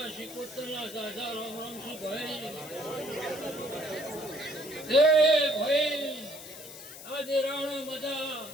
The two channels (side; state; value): left; noise; hiss, 14 dB below the sound